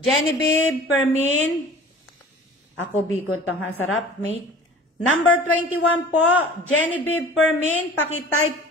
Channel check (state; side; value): normal; both; correlation 0.43